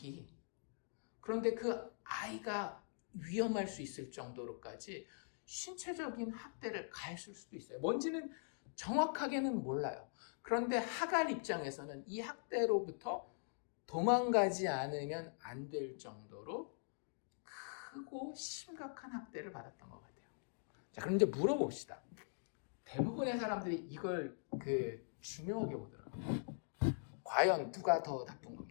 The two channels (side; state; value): right; silent; digital silence